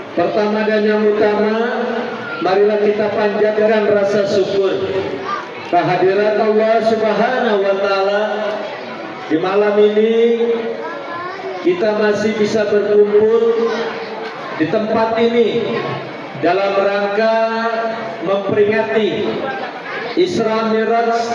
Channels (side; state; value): both; identical; correlation 1.00